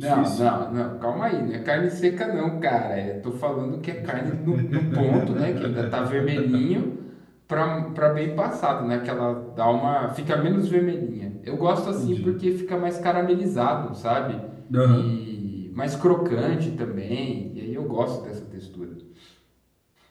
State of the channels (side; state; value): both; identical; correlation 1.00